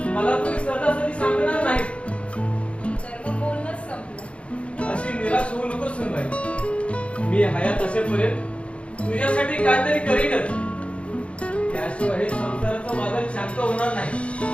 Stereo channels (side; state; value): right; late; 0.061 ms